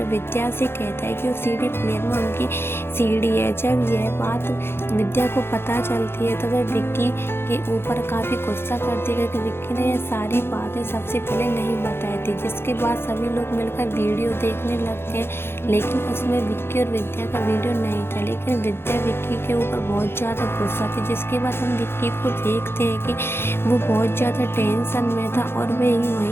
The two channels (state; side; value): late; right; 0.11 ms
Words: विद्या से कहता है कि वो सीडी प्लेयर में उनकी सीडी है। जब यह बात विद्या को पता चलती है तो वह विक्की के ऊपर काफ़ी गुस्सा करती है कि विक्की ने यह सारी बातें सबसे पहले नहीं बताई थी। जिसके बाद सभी लोग मिलकर वीडियो देखने लगते हैं, लेकिन उसमें विक्की और विद्या का वीडियो नहीं था। लेकिन विद्या विक्की के ऊपर बहुत ज़्यादा गुस्सा थी। जिसके बाद हम विक्की को देखते हैं कि वो बहुत ज़्यादा टेंशन में था और